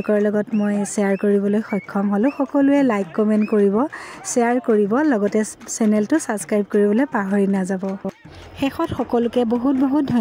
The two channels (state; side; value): identical; both; correlation 1.00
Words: লগত মই শ্বেয়াৰ কৰিবলৈ সক্ষম হ'লোঁ। সকলোৱে লাইক কমেণ্ট কৰিব, শ্বেয়াৰ কৰিব, লগতে চেনেলটো ছাবস্ক্ৰাইব কৰিবলৈ পাহৰি নাযাব। শেষত সকলোকে বহুত বহুত